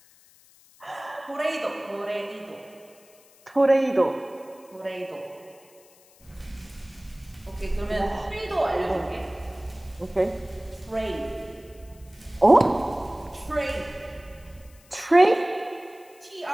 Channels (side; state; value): left; noise; hiss, 27 dB below the sound